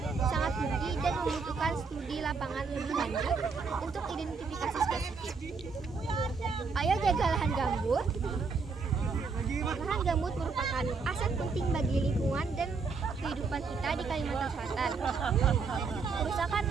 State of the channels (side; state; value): left; quieter; 4.7 dB